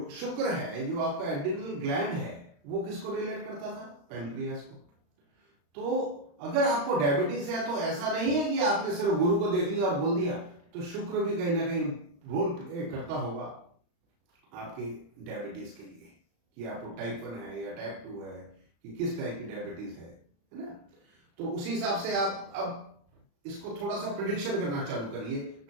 शुक्र है, जो आपका एड्रिनल ग्लैंड है, वो किसको रिलेट करता था, पैनक्रियास को। तो अगर आपको डायबिटीज है तो ऐसा नहीं है कि आपने सिर्फ गुरु को देख लिया और बोल दिया, तो शुक्र भी कहीं ना कहीं रोल प्ले करता होगा आपके डायबिटीज के लिए, कि आपको टाइप 1 है या टाइप 2 है, कि किस टाइप की डायबिटीज है ना। तो उसी हिसाब से आप अब इसको थोड़ा सा प्रिडिक्शन करना चालू करिए।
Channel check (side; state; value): left; late; 35 ms